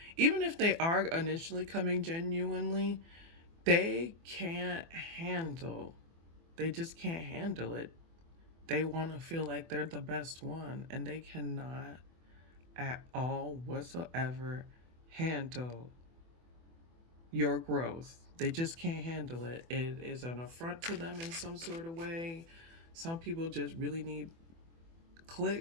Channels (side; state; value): left; late; 24 ms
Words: Even if they are initially coming genuinely, they can't handle, they just can't handle it. They want to feel like they're the best one, and they cannot at all whatsoever handle your growth. They just can't handle it. It is an affront to them in some sort of way. Some people just really need